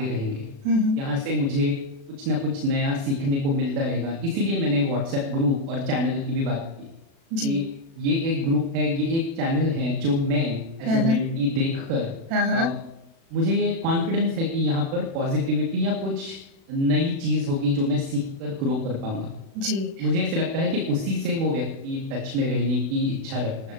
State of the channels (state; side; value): late; left; 36 ms